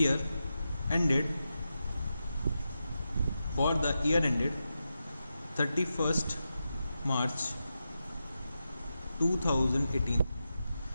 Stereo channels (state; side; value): inverted; both; correlation -0.89